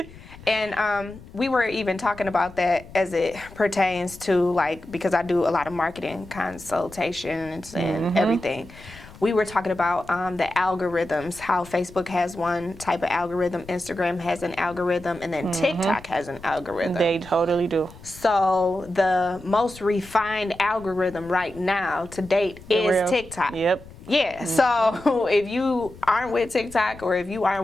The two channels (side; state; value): left; noise; rumble, 19 dB below the sound